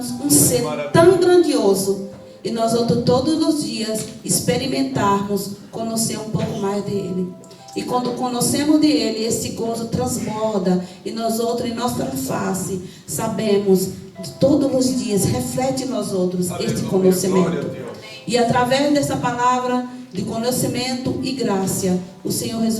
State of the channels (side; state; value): both; identical; correlation 1.00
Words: um ser tão grandioso e nós outros todos os dias experimentarmos conhecer um pouco mais dele. E quando conhecemos dele, esse gozo transborda e nós outros em nossa face sabemos todos os dias reflete em nós outros este conhecimento. E através dessa palavra de conhecimento e graça, o Senhor